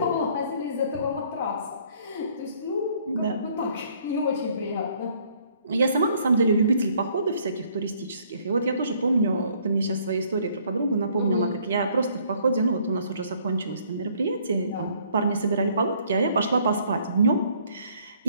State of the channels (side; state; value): both; inverted; correlation -0.62